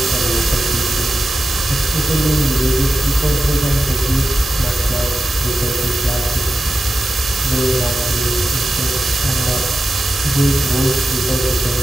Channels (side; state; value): both; normal; correlation 0.92